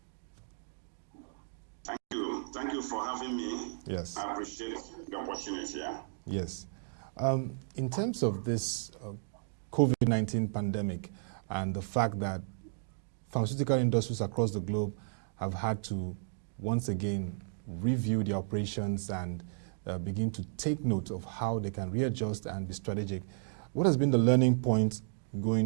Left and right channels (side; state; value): left; silent; digital silence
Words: Thank you for having me. Yes. I appreciate the opportunity. Yes. In terms of this COVID-19 pandemic and the fact that pharmaceutical industries across the globe have had to once again review their operations and begin to take note of how they can readjust and be strategic, what has been the learning point going